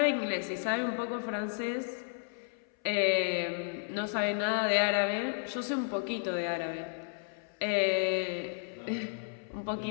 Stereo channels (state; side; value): silent; right; 56 dB below the other